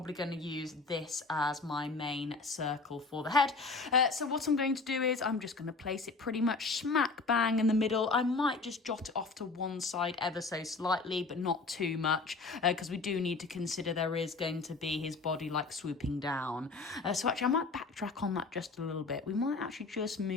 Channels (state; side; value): quieter; right; 3.9 dB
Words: going to use this as my main circle for the head. So what I'm going to do is I'm just going to place it pretty much smack bang in the middle. I might just jot it off to one side ever so slightly, but not too much, because we do need to consider there is going to be his body like swooping down. So actually I might backtrack on that just a little bit. We might actually just